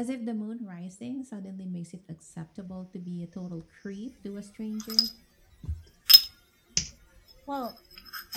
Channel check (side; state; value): both; identical; correlation 1.00